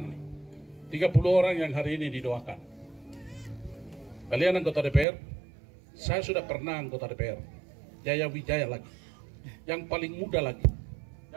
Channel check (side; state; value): left; drops out; at 5.1 s